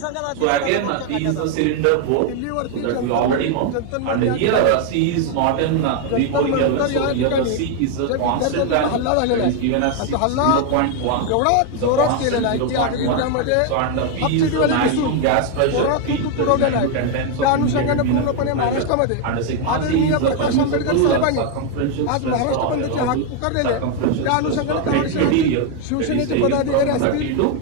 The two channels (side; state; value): both; different; correlation 0.01